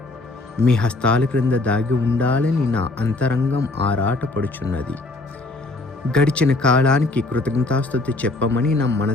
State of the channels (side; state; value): right; quieter; 3.1 dB